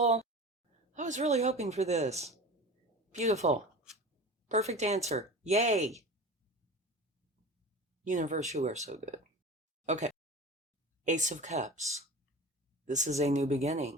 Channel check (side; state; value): both; normal; correlation 0.34